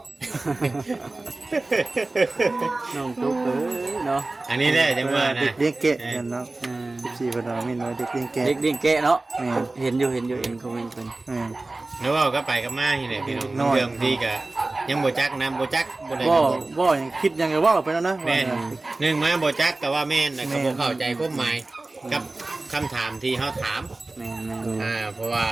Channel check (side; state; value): left; quieter; 3.1 dB